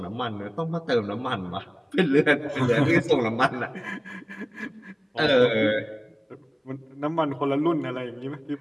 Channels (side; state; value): both; identical; correlation 1.00